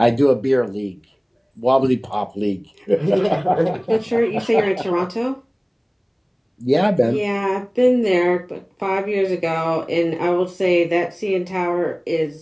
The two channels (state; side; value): identical; both; correlation 1.00